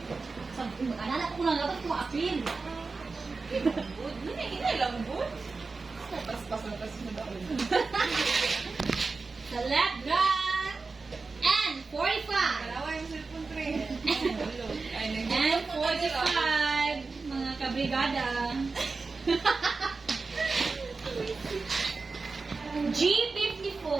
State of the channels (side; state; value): left; quieter; 4.1 dB